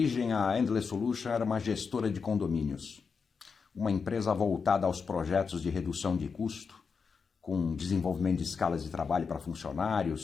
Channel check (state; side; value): quieter; right; 5.5 dB